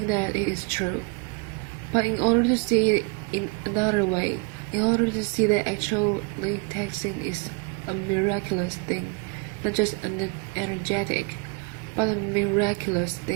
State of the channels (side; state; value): left; quieter; 31.9 dB